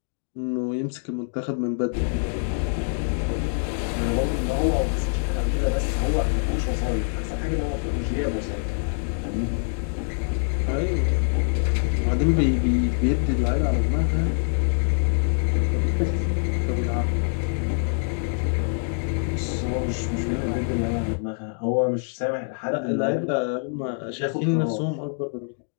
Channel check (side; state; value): right; silent; digital silence